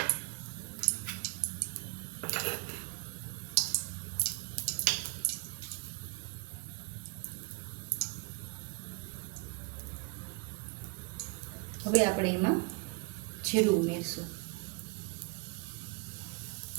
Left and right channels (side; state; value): left; quieter; 32.3 dB